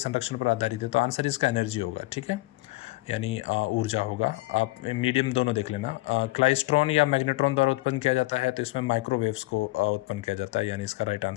पर आधारित है, तो आंसर इसका एनर्जी होगा। ठीक है, यानी ऊर्जा होगा। आप मीडियम दोनों देख लेना। क्लाइस्ट्रॉन या मैग्नेट्रॉन द्वारा उत्पन्न किया जाता है, तो इसमें माइक्रोवेव्स को उत्पन्न किया जाता है, यानी इसका राइट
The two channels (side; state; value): right; quieter; 21.2 dB